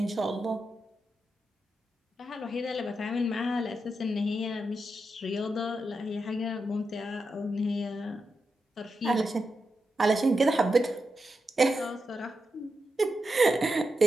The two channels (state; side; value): normal; both; correlation 0.87